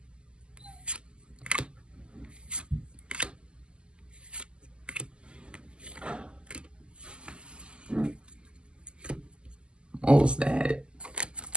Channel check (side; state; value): left; late; 0.050 ms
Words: What was that?